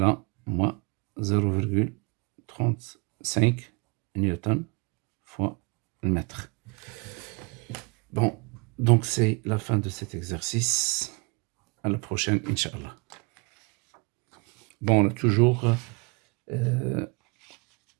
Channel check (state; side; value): quieter; left; 30.1 dB